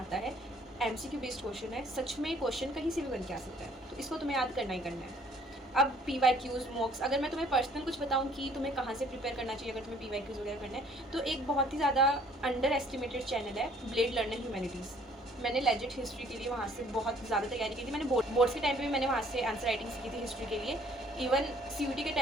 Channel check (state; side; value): normal; both; correlation 0.58